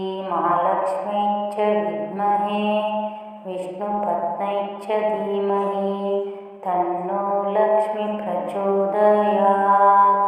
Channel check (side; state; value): both; identical; correlation 1.00